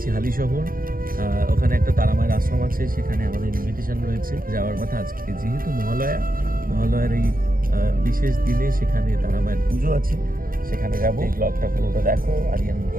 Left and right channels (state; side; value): late; left; 0.41 ms